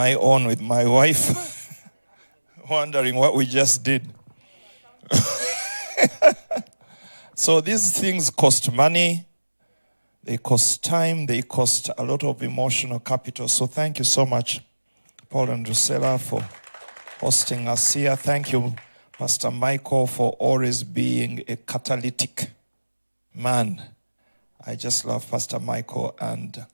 own with my wife, wondering what we just did? So these things cost money, they cost time, they cost a lot of emotional capital. So thank you so much, Paul and Drusilla, for hosting us here. Thank you, Pastor Michael, for always being a catalytic man. I just love Pastor Michael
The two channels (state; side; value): inverted; both; correlation -1.00